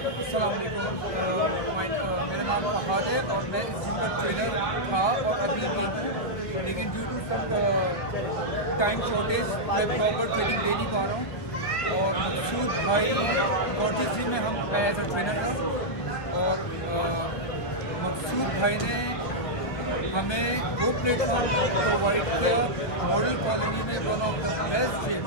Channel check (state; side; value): late; right; 1.6 ms